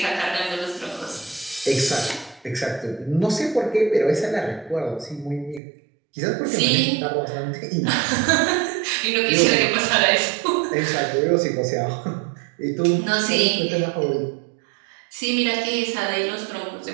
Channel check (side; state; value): left; drops out; at 5.6 s